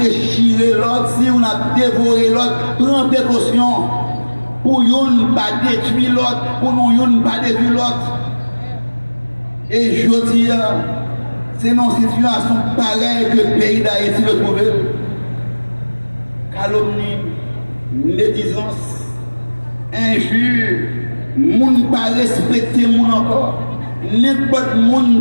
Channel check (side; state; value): both; inverted; correlation -1.00